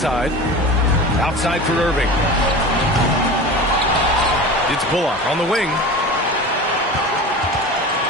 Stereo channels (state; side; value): normal; both; correlation 0.33